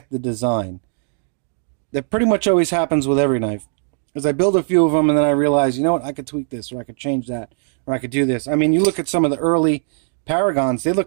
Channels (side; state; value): left; silent; digital silence